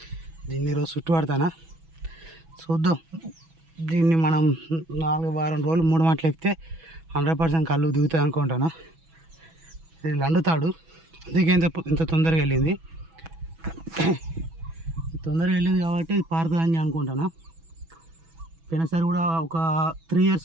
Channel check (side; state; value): left; late; 6.1 ms